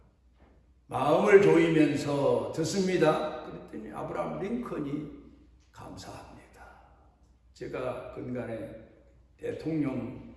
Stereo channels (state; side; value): identical; both; correlation 1.00